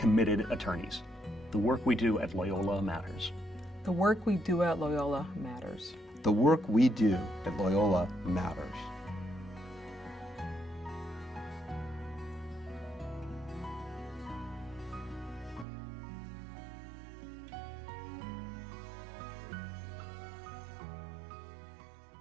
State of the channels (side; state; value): left; drops out; at 15.7 s